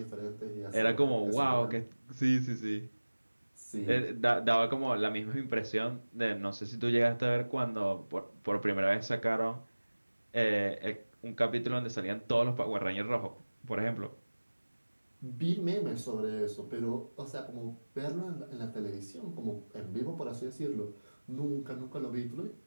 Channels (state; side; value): inverted; both; correlation -1.00